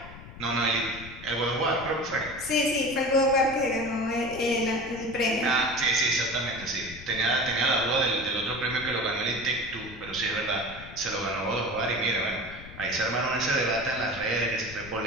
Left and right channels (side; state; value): left; noise; rumble, 15 dB below the sound